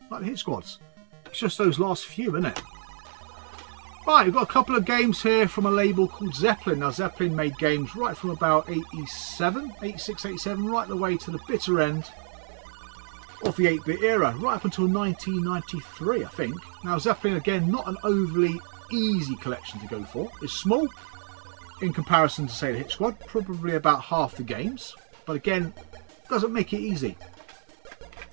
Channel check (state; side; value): silent; left; 60 dB below the other